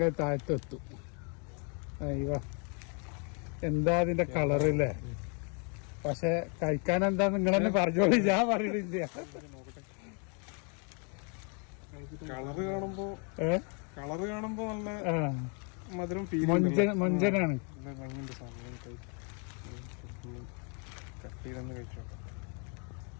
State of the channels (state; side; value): quieter; right; 37.2 dB